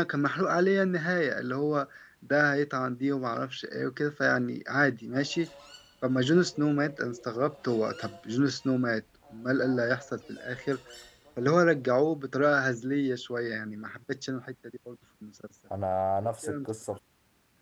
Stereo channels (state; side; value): identical; both; correlation 1.00